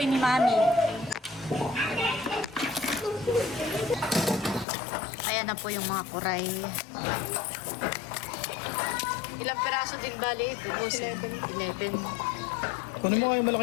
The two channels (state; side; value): drops out; right; at 4.7 s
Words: ni Mami. Ayan na po yung mga kuray. Ilang peraso din bali ito? 11. Kunin mo nga yung